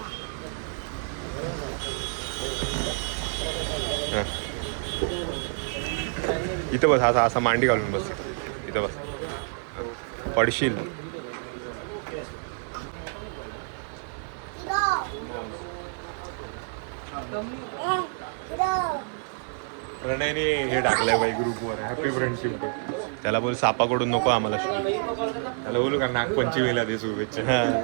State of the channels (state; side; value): silent; left; 59 dB below the other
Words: इथं बस असा असा मांडी घालून बस इथं बस पडशील प्रणयने हे टाकलंय बाई ग्रुपवर हॅपी फ्रेंडशिप डे त्याला बोल सापाकडून नको आम्हाला त्याला बोलू का नागपंचमीला दे शुभेच्छा. हा